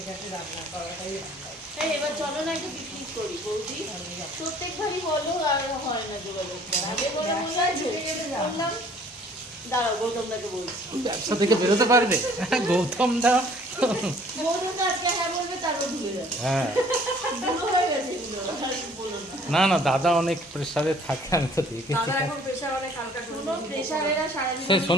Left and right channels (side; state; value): both; normal; correlation 0.56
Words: ঘাটে রান্না করাটাই রান্না। এই এবার চলো না একটু পিকনিক করি বৌদি, প্রত্যেকবারই বলো আর হয় না যোগাযোগ। আগে বলে বললাম দাঁড়াও গৌতমদাকে বলছি। ব্যবসা থেকে বেরোতে পারবে গৌতম দা? গৌতম দা আজকে হ্যাঁ বলবে, তারপর ঢুকে যাবে। হ্যাঁ, বুড়ো হয়ে গেছে এগুলো, আর বলো না। না না, দাদা অনেক প্রেশারে থাকে, আমি তো দেখেছি। দাদা এখন প্রেশার অনেক হালকা করে কোনো প্রেশারেরা সারাদিন সে